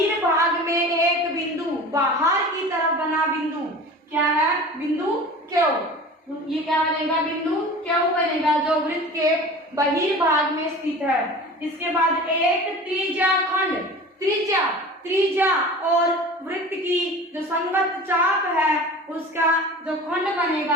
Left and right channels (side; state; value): both; normal; correlation 0.38